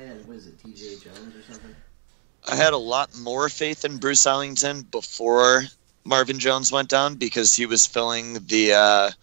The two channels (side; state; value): left; silent; 56 dB below the other